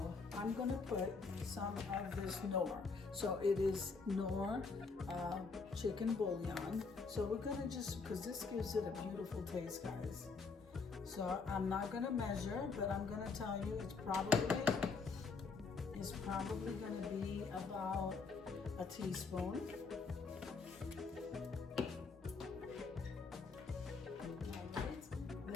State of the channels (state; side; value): quieter; right; 4.6 dB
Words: I'm gonna put some of this Knorr. So it is Knorr chicken bouillon. So we're gonna because this gives it a beautiful taste, guys. So I'm not gonna measure, but I'm gonna tell you it's probably gonna be about a teaspoon.